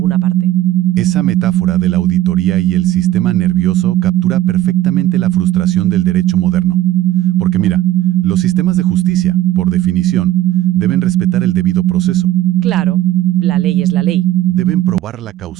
parte. Esa metáfora de la auditoría y el sistema nervioso captura perfectamente la frustración del derecho moderno. Porque mira, los sistemas de justicia, por definición, deben respetar el debido proceso. Claro, la ley es la ley. Deben probar la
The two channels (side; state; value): left; quieter; 13.7 dB